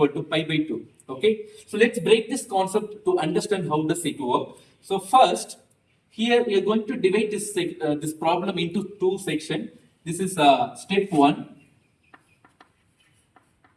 to pi by 2. Okay, so let's break this concept to understand how does it work. So first, here we are going to divide this problem into two sections. This is step 1.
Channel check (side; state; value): both; identical; correlation 1.00